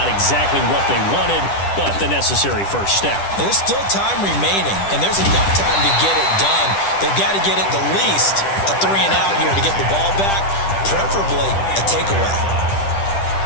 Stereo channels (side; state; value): right; late; 10 ms